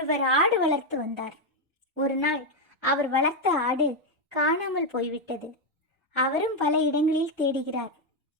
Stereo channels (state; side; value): normal; both; correlation 0.04